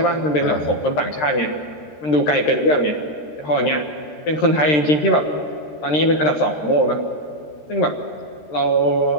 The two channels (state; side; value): late; right; 13 ms